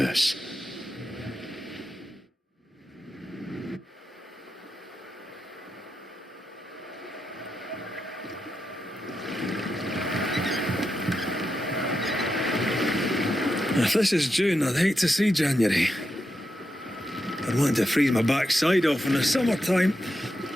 If this is June, I'd hate to see January. I'd want to freeze my backside off in the summertime.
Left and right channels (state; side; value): normal; both; correlation 0.86